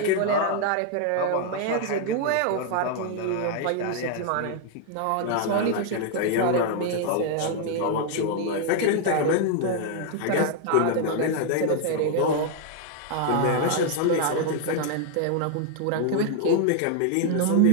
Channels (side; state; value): both; different; correlation 0.00